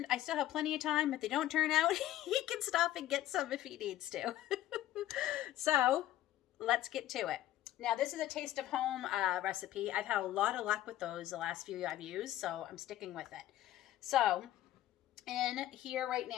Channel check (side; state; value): right; quieter; 13.8 dB